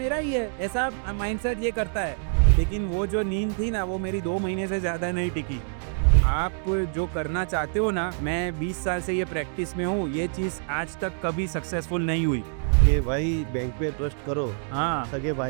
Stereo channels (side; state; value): left; silent; 56 dB below the other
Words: ही है, ऐसा माइंडसेट ये करता है। लेकिन वो जो नींद थी ना वो मेरी 2 महीने से ज़्यादा नहीं टिकी। आप जो करना चाहते हो ना, मैं 20 साल से ये प्रैक्टिस में हूँ, ये चीज़ आज तक कभी सक्सेसफुल नहीं हुई। कि भाई बैंक पे ट्रस्ट करो, हाँ, सगे